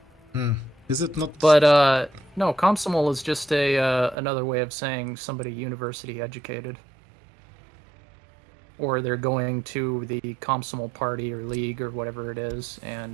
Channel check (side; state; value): left; drops out; at 4.2 s